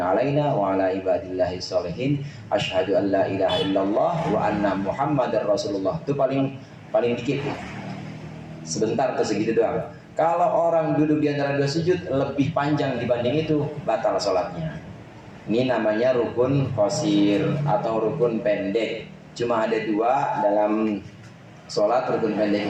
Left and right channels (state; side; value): identical; both; correlation 1.00